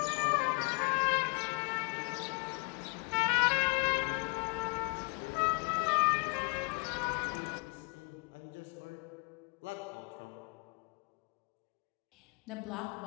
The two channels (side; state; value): right; quieter; 34.7 dB